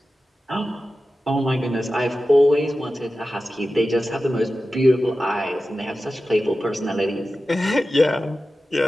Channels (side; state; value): both; normal; correlation 0.94